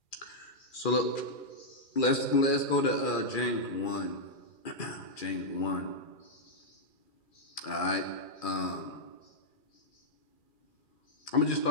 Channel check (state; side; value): late; right; 2.4 ms